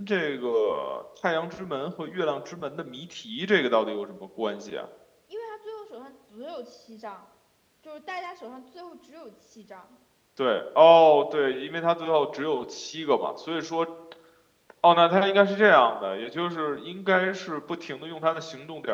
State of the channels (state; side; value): identical; both; correlation 1.00